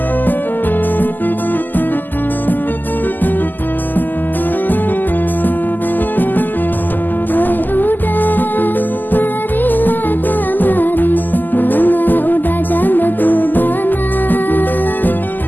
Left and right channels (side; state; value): right; late; 0.087 ms